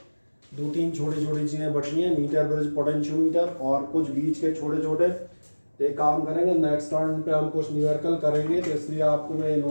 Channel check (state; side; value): inverted; both; correlation -1.00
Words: 2-3 छोटी छोटी चीज़ें बची हैं, मीटर ब्रिज पोटेंशियोमीटर और कुछ बीच के छोटे छोटे। तो एक काम करेंगे, नेक्स्ट टर्न पे हम कुछ न्यूमेरिकल करेंगे, तो इसलिए आपको मैं